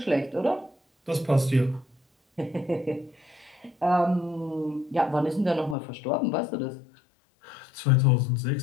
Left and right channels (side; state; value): right; drops out; at 5.8 s